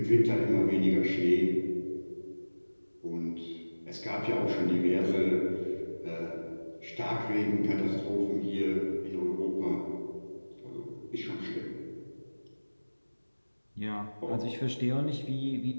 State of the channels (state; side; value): inverted; both; correlation -1.00